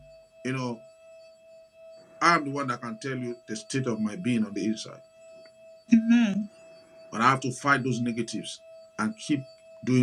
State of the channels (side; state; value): both; identical; correlation 1.00